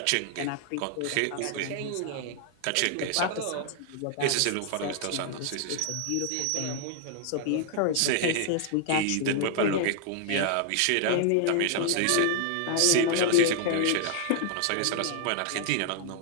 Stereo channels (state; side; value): different; both; correlation 0.00